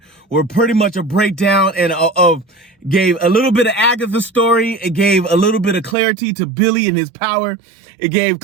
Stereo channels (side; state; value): left; drops out; at 6.0 s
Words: were pretty much a breakdown and gave a little bit of Agatha's story. It gave a little bit of clarity to Billy and his power. It gave